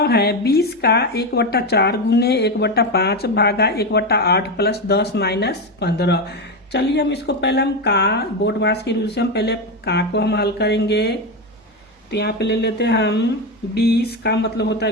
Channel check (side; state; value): both; normal; correlation 0.13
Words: है 20 का 1/4 गुने 1/5 भागा 1/8 + 10 - 15। चलिए हम इसको पहले हम का बोर्ड मास के रूल से हम पहले का को हम हल करेंगे। तो यहाँ पे ले लेते हैं हम 20 का मतलब होता